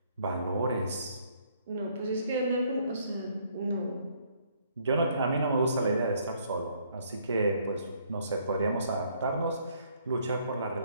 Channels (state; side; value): inverted; both; correlation -0.66